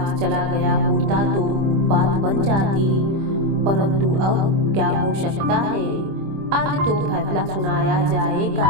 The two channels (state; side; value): late; left; 25 ms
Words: चला गया होता तो बात बन जाती, परंतु अब क्या हो सकता है। आज तो फैसला सुनाया